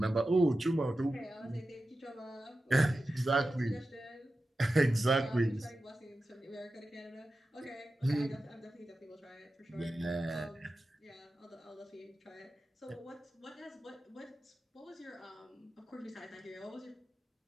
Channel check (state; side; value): normal; both; correlation 0.93